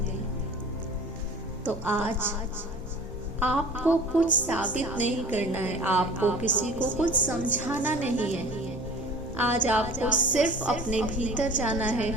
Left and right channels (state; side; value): normal; both; correlation 0.43